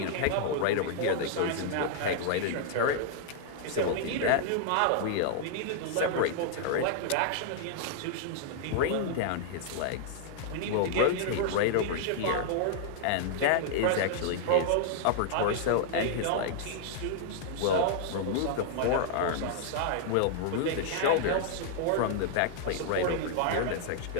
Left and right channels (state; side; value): different; both; correlation -0.01